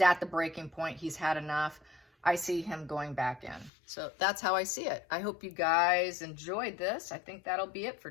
at the breaking point. He's had enough. I see him going back in. So that's how I see it. I hope you guys enjoyed this. I think that'll be it for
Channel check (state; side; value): drops out; right; at 3.7 s